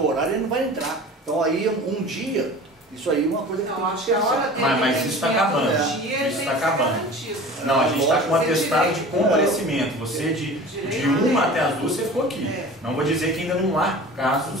o horário, ele não vai entrar. Então aí um dia, isso aí é uma coisa que tem que ser. Mas isso está acabando. Isso está acabando. Não, a gente está com um atestado de comparecimento. Você de 1 até as 2 você ficou aqui. Não vou dizer que ainda não há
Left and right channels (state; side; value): normal; both; correlation 0.39